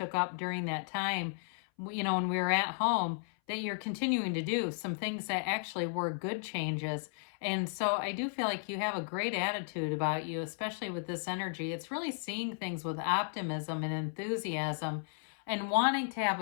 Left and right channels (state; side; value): silent; right; 55 dB below the other